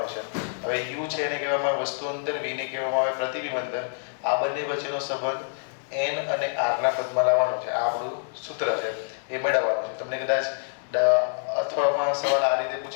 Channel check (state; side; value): silent; right; digital silence